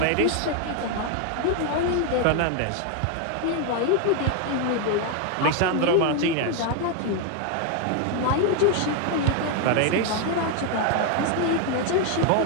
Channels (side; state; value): both; different; correlation 0.01